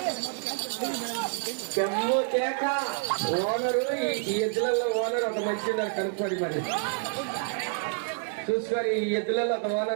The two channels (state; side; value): silent; left; 59 dB below the other